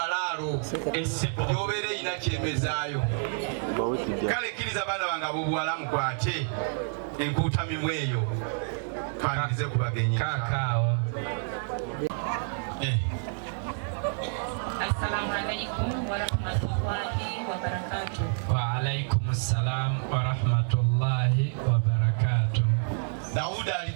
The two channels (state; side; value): silent; left; 59 dB below the other